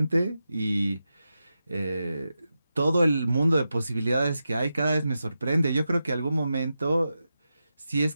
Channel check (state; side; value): inverted; both; correlation -0.90